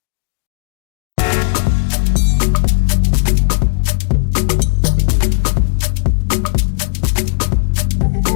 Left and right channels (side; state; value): right; silent; digital silence